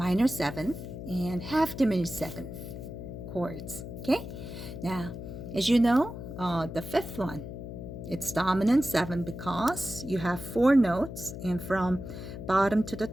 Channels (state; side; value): noise; left; hum, 9 dB below the sound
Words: seventh, and half diminished seventh chords. Okay, now as you know, the fifth one, it's dominant seven because you have four notes, and from bottom to the